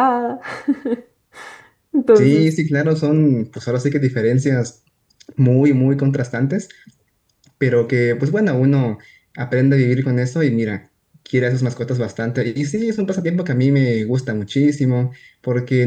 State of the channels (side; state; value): both; identical; correlation 1.00